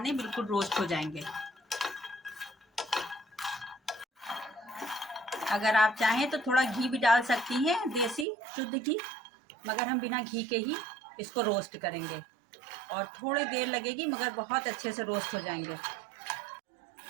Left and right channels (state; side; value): drops out; left; at 8.2 s